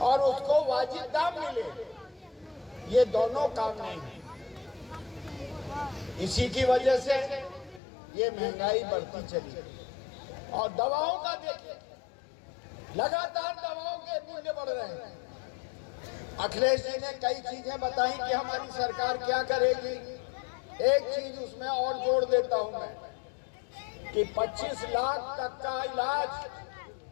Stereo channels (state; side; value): drops out; right; at 7.8 s